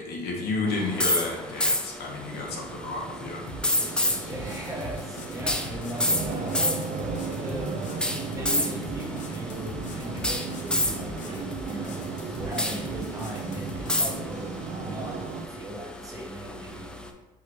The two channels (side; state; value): both; normal; correlation -0.05